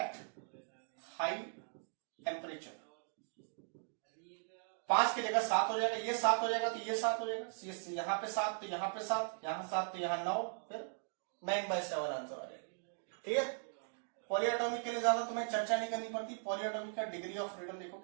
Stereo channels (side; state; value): left; silent; digital silence